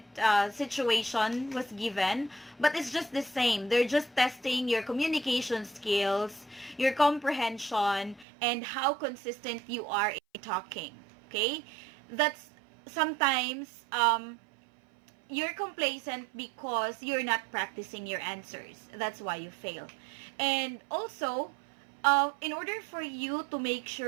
situation was given, but it's just the same. They're just testing your communication skills, your comprehension, and how consistent you are in talking. Okay? That's sometimes you're complacent because you're not practicing your answers. That's why you fail. And also, in order for you to make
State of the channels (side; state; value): left; drops out; at 8.2 s